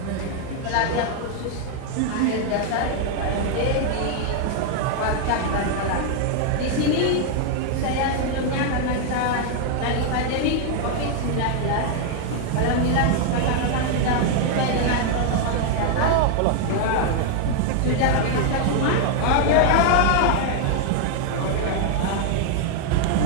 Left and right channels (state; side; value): different; both; correlation 0.00